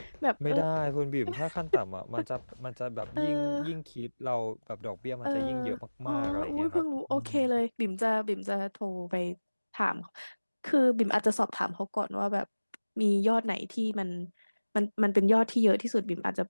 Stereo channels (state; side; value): inverted; both; correlation -1.00